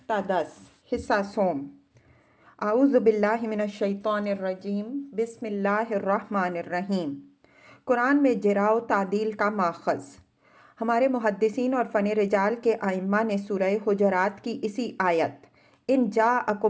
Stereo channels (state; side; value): identical; both; correlation 1.00